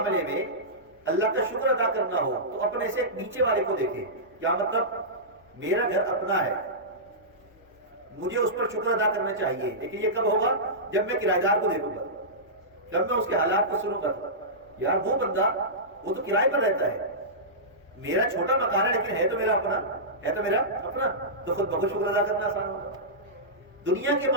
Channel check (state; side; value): normal; both; correlation -0.16